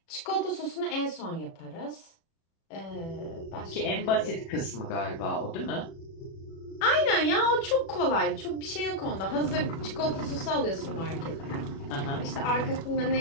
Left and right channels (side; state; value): right; late; 36 ms